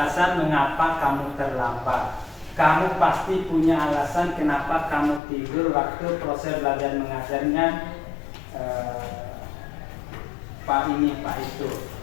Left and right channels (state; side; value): drops out; right; at 5.2 s